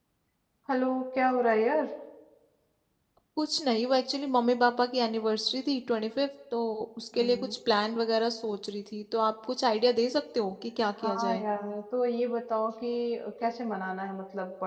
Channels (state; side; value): identical; both; correlation 1.00